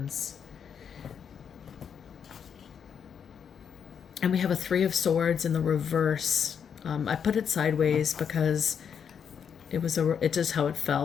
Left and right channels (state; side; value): quieter; right; 7.4 dB